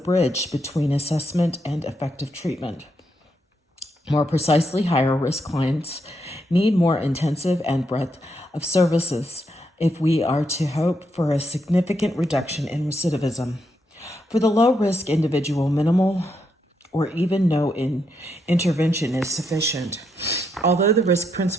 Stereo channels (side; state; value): both; normal; correlation 0.79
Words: between assessment and effective treatment. More precisely, higher risk clients need more intensive and breadth of services if we are to hope for a significant reduction in recidivism. For the low-risk individual, minimal or even no intervention is sufficient. Although the risk